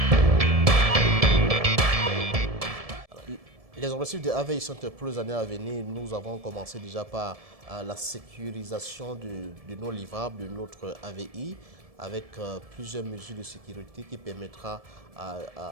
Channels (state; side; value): late; left; 1.7 ms